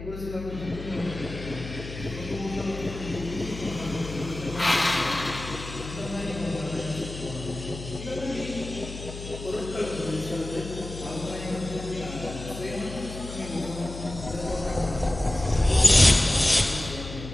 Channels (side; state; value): left; noise; hum, 10 dB below the sound